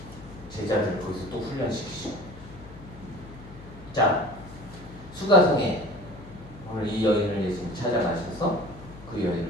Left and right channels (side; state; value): left; noise; hum, 17 dB below the sound